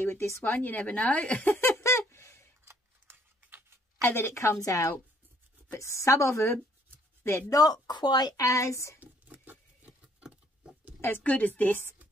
with this one, you never know. And then it comes out. But some of them, they're not quite as good as this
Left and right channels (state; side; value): normal; both; correlation 0.64